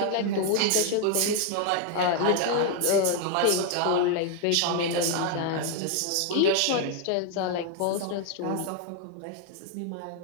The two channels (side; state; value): both; different; correlation 0.00